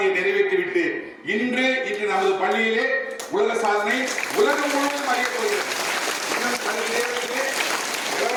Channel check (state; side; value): identical; both; correlation 1.00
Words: நிறைவேற்றிவிட்டு இன்று நமது பள்ளியிலே உலக சாதனை உலகம் முழுவதும் அறியப்படுகிறது.